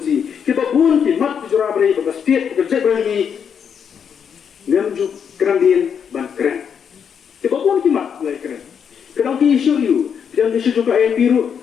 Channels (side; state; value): right; quieter; 7.4 dB